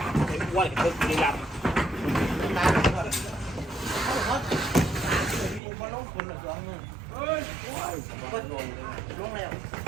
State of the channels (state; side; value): drops out; left; at 5.6 s